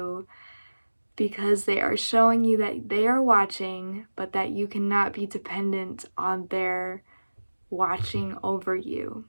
because they are showing you that they are watching, but that you cannot be dependent on their watching over you.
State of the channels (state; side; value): inverted; both; correlation -1.00